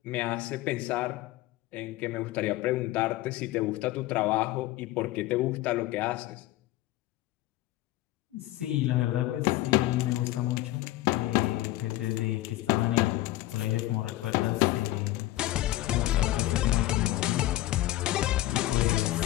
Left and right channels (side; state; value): right; quieter; 16.3 dB